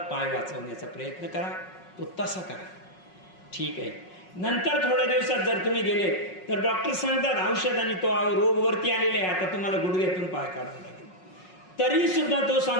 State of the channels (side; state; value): right; late; 5.5 ms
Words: वाचवण्याचा प्रयत्न करा, तो तसा करा. ठीक आहे. नंतर थोड्या दिवसात जर तुम्ही गेले तर डॉक्टर सांगतात औषधाने तो रोग वरती आलेला आहे, आता तुम्हाला गुडघ्यातून पाय काढावा लागेल. तरी सुद्धा तो